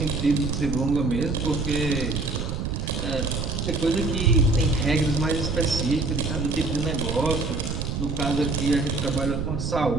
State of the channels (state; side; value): noise; right; rumble, 2 dB below the sound